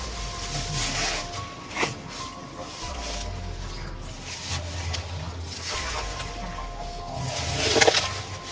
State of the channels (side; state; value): both; identical; correlation 1.00